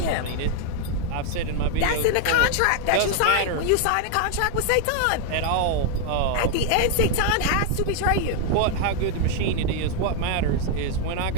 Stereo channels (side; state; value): both; different; correlation 0.00